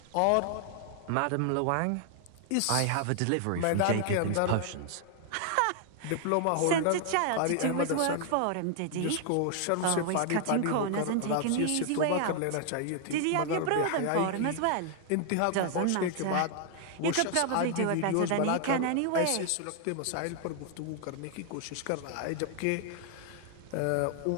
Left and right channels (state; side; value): different; both; correlation 0.00